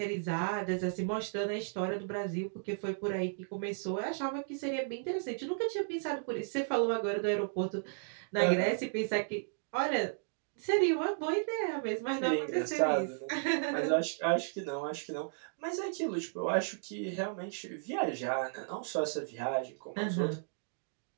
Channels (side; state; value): left; silent; digital silence